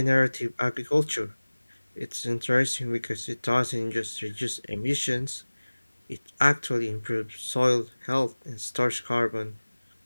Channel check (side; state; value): both; inverted; correlation -1.00